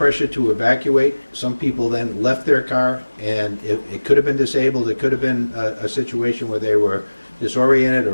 to evacuate. Some people then left their car, and it could have been disabled. It could have been a situation where they were disoriented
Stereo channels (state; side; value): inverted; both; correlation -1.00